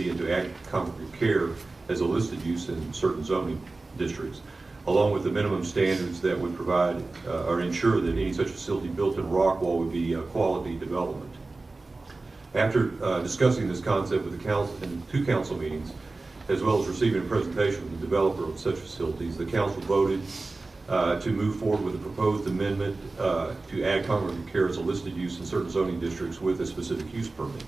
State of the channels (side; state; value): left; quieter; 3.4 dB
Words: and to add congregate care as a listed use in certain zoning districts, along with the minimum standards that would provide or ensure that any such facility built in Rockwall would be a quality development. After discussing this concept with the council in 2 council meetings, as well as receiving a presentation from the developer of such facilities, the council voted to move forward with a proposed amendment to add congregate care as a listed use in certain zoning districts with a specific use permit.